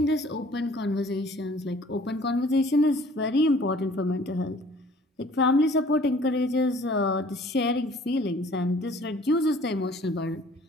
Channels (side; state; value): both; normal; correlation 0.53